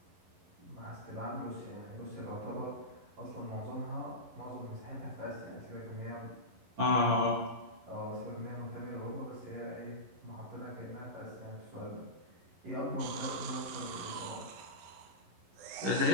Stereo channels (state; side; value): late; left; 11 ms